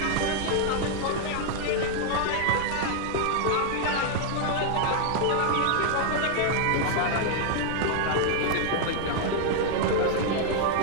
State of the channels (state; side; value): different; both; correlation 0.00